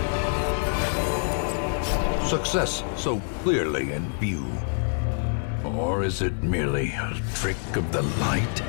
Success so clearly in view. Or is it merely a trick of the light?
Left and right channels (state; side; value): silent; right; 61 dB below the other